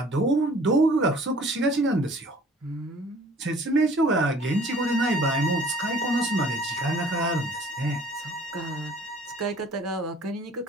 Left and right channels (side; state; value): both; normal; correlation 0.53